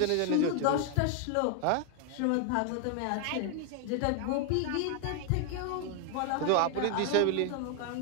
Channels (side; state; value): both; different; correlation 0.00